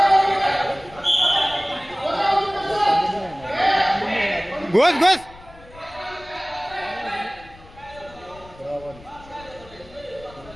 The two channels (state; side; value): noise; left; rumble, 22 dB below the sound